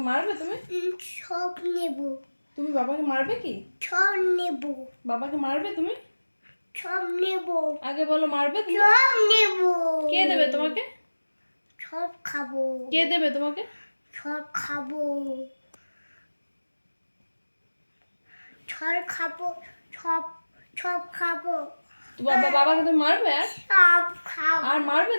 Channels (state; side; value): inverted; both; correlation -1.00